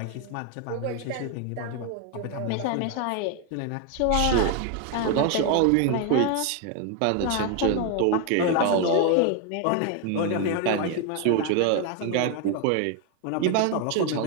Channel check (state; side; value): different; both; correlation 0.01